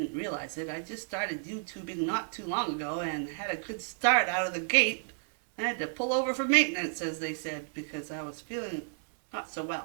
realize it, I just started YouTubing not too long ago and had a good start out of the gate. I had to pull over for maintenance, as they said, because I was feeling not so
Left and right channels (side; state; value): left; silent; 57 dB below the other